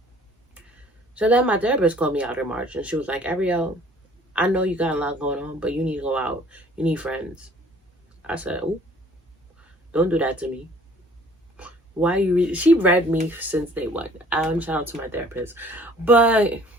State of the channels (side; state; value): both; normal; correlation 0.55